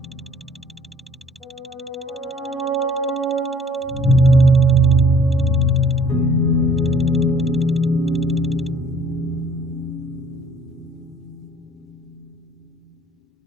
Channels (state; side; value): normal; both; correlation 0.55